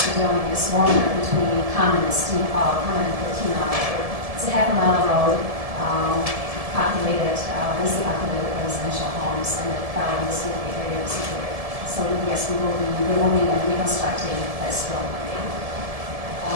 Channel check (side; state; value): left; late; 1.7 ms